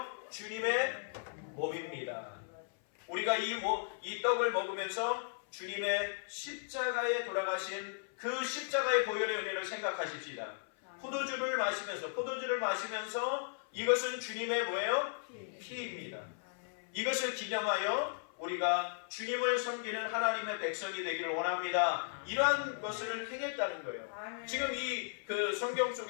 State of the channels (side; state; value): right; silent; 54 dB below the other